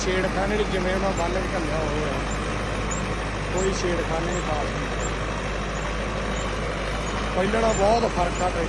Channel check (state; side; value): identical; both; correlation 1.00